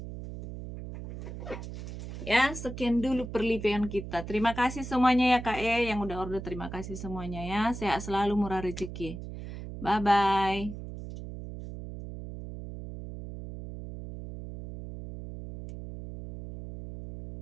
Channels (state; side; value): noise; right; hum, 9 dB below the sound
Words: Ya, sekian dulu perlipian kita. Terima kasih semuanya ya Kak yang udah order. Terima kasih semuanya ya. Sehat selalu, murah rezeki. Bye-bye.